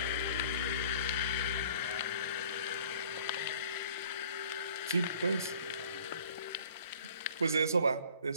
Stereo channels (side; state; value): both; inverted; correlation -0.52